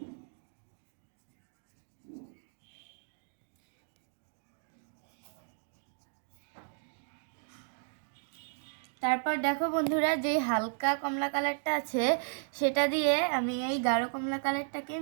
তারপর দেখো বন্ধুরা, যে হালকা কমলা কালারটা আছে সেটা দিয়ে আমি এই গাঢ় কমলা কালারটাকে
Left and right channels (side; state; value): left; silent; digital silence